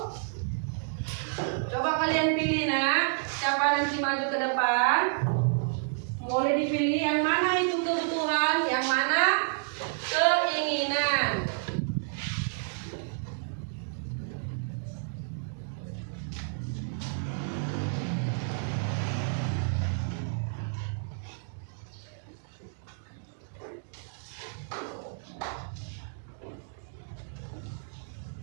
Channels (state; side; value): silent; left; digital silence